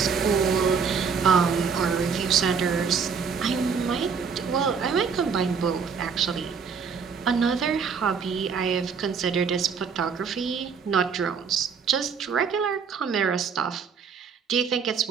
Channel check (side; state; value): left; quieter; 6.0 dB